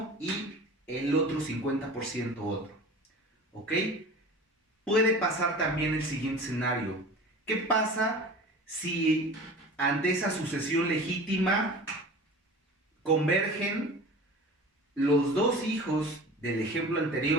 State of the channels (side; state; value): both; normal; correlation 0.38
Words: y el otro 50% otro. ¿Ok? Puede pasar también el siguiente escenario. ¿Qué pasa si ante esa sucesión legítima convergen los dos hijos del ejemplo